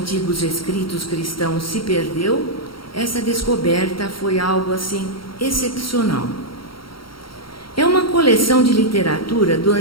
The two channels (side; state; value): right; late; 0.74 ms